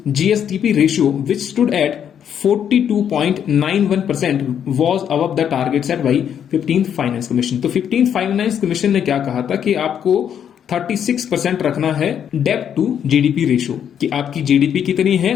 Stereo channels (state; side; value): quieter; right; 8.8 dB